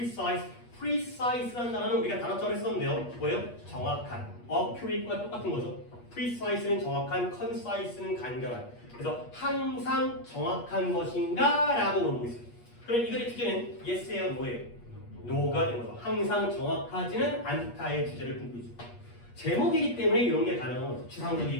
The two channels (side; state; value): right; late; 8.4 ms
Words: precise라는 단어는 우리가 단어처럼 했었는데요. 뭐예요? 정확한. accurate과 똑같은 거죠. precise는 정확한, concise는 간결한. 그래서 항상 정확한 것인가? 라고 물어보고 있어요. 그럼 이 글의 주제는 yes예요, no예요? no가 되는 거죠. 항상 정확하지는 않다의 주제를 품고 있죠. 제목이기 때문에 이런 게 가능한 거죠.